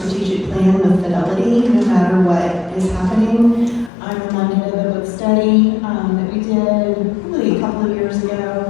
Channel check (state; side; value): drops out; right; at 3.9 s